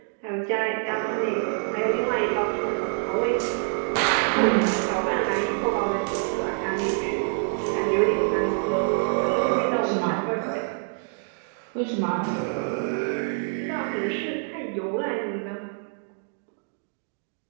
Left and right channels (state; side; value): silent; left; 60 dB below the other